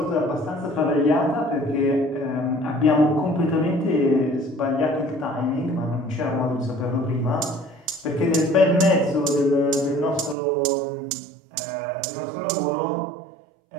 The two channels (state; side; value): drops out; left; at 10.4 s